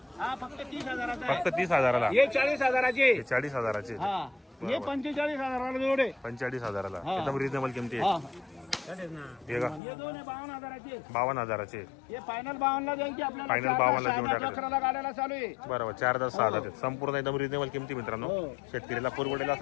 हा फक्त 30,000 आहे. फक्त 30,000ला. हे 40,000 हे 40,000चे. हा हे 45,000 जोडे. 45,000ला. हा. एकदम रिजनेबल किमती हा आहे. हे का? हे दोन आहे 52,000 52,000चे. हे फायनल 52 द्यायची आपल्याला. Final 52 देऊन टाकायचे. 11 गाड्याला चालू आहे. बरोबर. 4-10 6 संपूर्ण एकदम रिजनेबल किमती मित्रांनो. हो. शेतकरीला पुरवडेला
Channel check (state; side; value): drops out; right; at 9.8 s